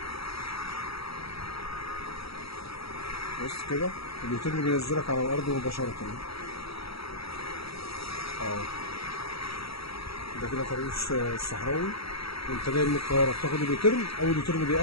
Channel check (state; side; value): late; right; 0.76 ms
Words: بص كده اليوتيرن بينزلك على الأرض مباشرة أهو. ده كده طريق الصحراوي، وأنت جاي من القاهرة بتاخد اليوتيرن، أول يوتيرن